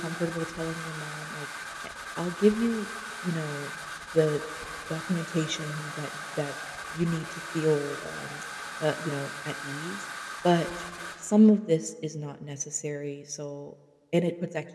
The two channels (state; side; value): identical; both; correlation 1.00